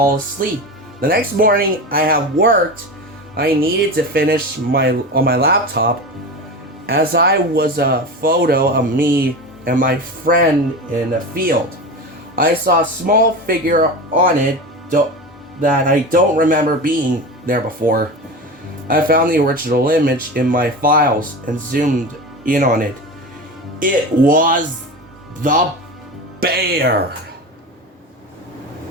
asleep. The next morning, I had worked. I needed to finish on my laptop, as I was a photo of me and my friend in a field. I saw a small figure on it that I don't remember being there before. I found the original image in my files and zoomed in on it. It was the bear.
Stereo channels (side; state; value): both; normal; correlation 0.26